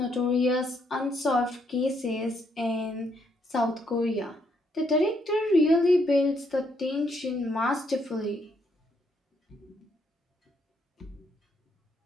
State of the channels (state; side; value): normal; both; correlation 0.74